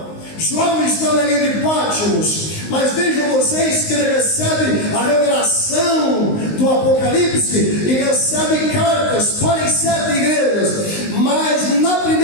João está na ilha de Patmos, mas vejam vocês que ele recebe a revelação do Apocalipse e recebe cartas para as 7 igrejas, mas na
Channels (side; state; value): right; late; 19 ms